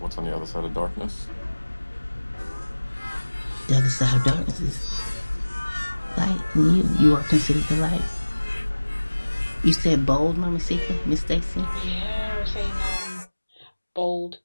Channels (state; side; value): inverted; both; correlation -1.00